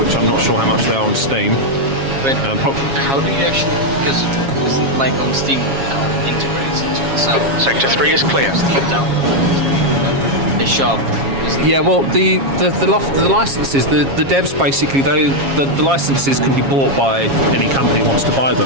I'm not sure how much they are on Steam. But how do you actually? Because isn't like on Steam, integrates into itself. Sector 3 is clear. Steam download. They shove. Yeah, well, the licenses, the devs basically, the licenses can be bought by any company who wants to buy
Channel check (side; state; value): left; late; 7.3 ms